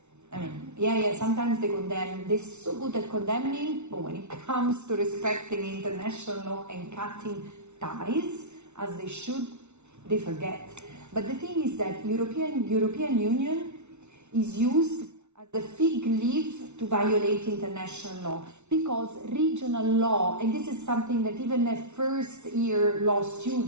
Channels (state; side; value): late; left; 0.82 ms